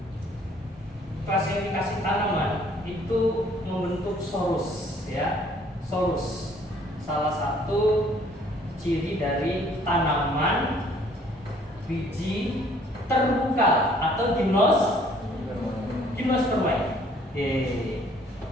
klasifikasi tanaman itu membentuk sorus, ya. Sorus salah satu ciri dari tanaman biji terbuka atau gimnospermae.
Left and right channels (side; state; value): both; normal; correlation 0.59